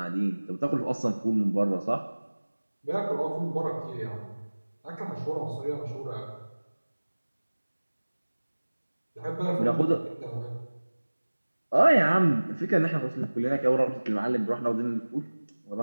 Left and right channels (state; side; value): inverted; both; correlation -1.00